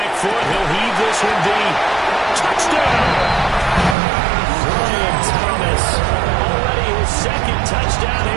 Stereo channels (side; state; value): left; drops out; at 4.0 s